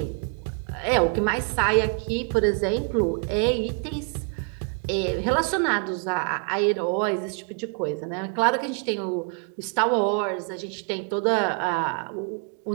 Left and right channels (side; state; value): left; quieter; 39.6 dB